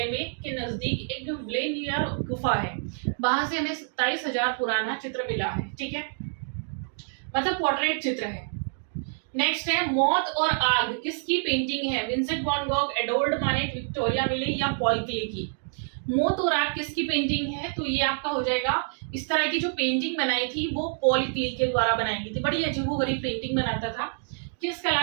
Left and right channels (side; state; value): left; silent; digital silence